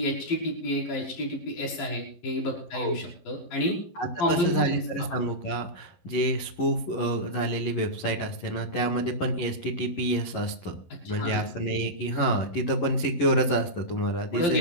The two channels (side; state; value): right; late; 11 ms